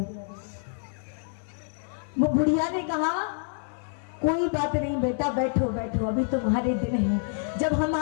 वो बुढ़िया ने कहा कोई बात नहीं बेटा, बैठो बैठो, अभी तुम्हारे दिन है, जब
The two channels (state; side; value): silent; right; 60 dB below the other